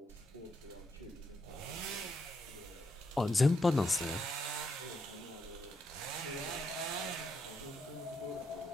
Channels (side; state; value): both; normal; correlation 0.80